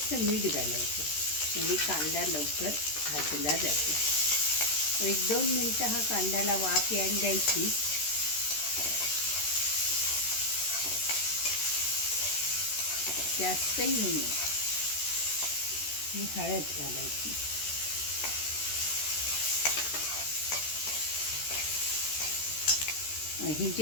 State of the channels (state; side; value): late; right; 13 ms